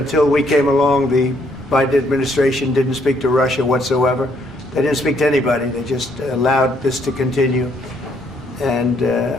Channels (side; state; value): both; normal; correlation 0.69